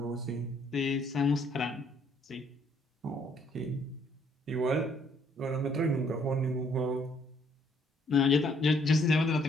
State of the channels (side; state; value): both; normal; correlation 0.66